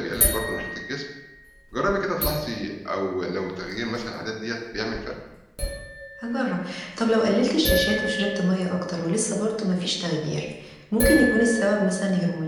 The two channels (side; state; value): both; identical; correlation 1.00